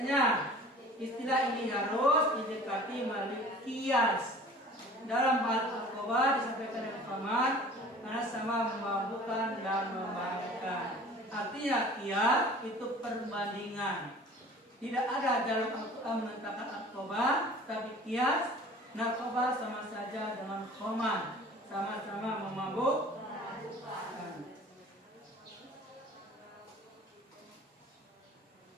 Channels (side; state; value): both; normal; correlation 0.45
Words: Istilah ini harus didekati melalui kias. Dalam hal narkoba disampaikan dengan paman karena sama memabukkan dan memabukkan. Artinya kias itu perbandingan. Tidak ada dalam Al-Quran menentangkan narkoba, tapi kias narkoba sama saja dengan khamar, sama-sama memabukkan.